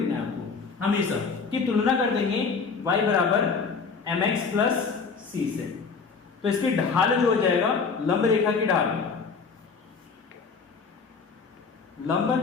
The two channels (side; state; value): right; quieter; 5.1 dB